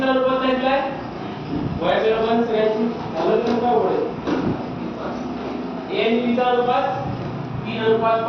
चा अनुपात सांगितलाय y च्या अनुपात सगळ्यांची झालं तर काय होईल. ए आणि बी चा अनुपात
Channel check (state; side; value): identical; both; correlation 1.00